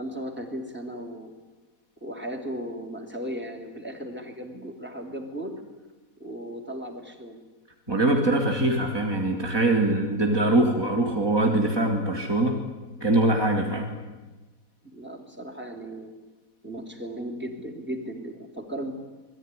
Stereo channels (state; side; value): late; right; 4.1 ms